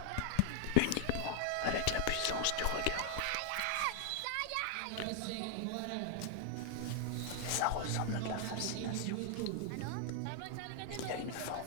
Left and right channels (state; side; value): different; both; correlation 0.00